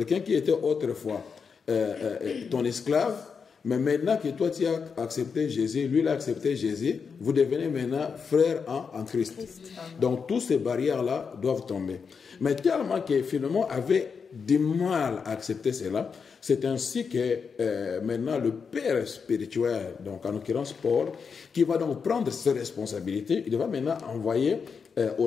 qui était autrefois ton esclave, mais maintenant que toi tu as accepté Jésus, lui il a accepté Jésus, vous devenez maintenant frères en Christ. Donc toutes ces barrières-là doivent tomber. Mais tellement que finalement avait du mal à accepter cela, c'est ainsi que maintenant le père spirituel, donc en l'occurrence Paul, qui va donc prendre ses responsabilités, il va maintenant envoyer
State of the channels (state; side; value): quieter; right; 5.8 dB